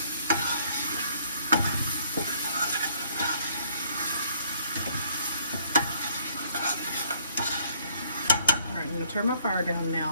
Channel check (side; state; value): both; inverted; correlation -0.63